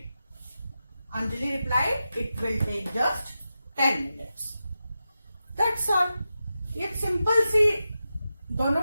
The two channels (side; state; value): both; inverted; correlation -0.91